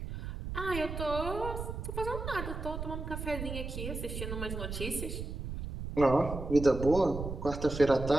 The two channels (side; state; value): right; noise; rumble, 6 dB below the sound